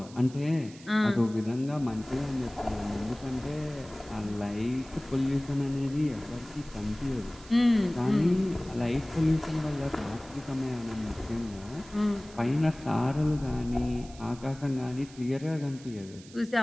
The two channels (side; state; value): right; noise; hiss, 21 dB below the sound